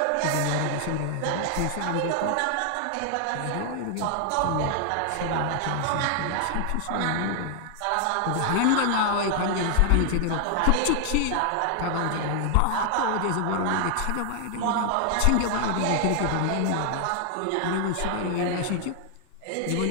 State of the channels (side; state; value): both; different; correlation 0.00